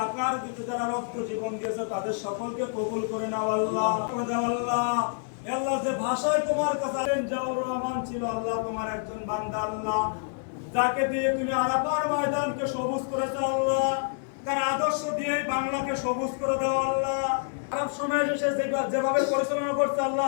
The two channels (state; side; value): silent; right; 60 dB below the other